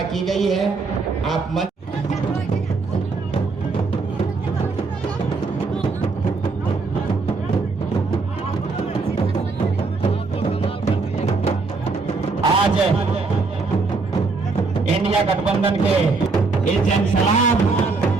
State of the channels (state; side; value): quieter; left; 4.1 dB